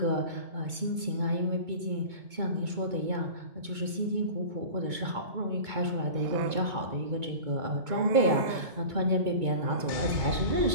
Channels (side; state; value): left; late; 2.2 ms